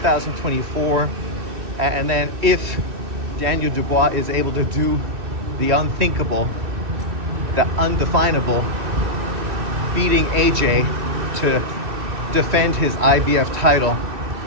And then if Daniel Dubois is able to do the unthinkable, the undefinable, beating AJ to defend his IBF title,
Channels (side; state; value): left; late; 2.8 ms